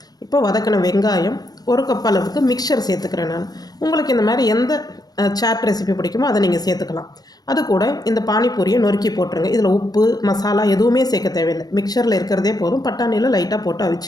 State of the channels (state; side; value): late; right; 0.19 ms